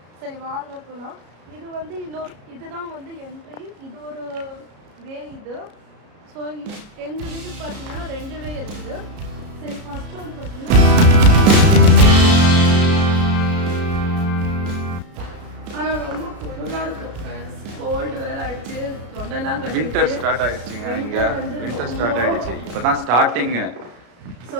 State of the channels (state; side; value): late; left; 33 ms